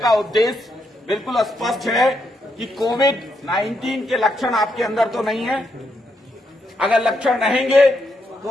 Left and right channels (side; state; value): both; normal; correlation 0.79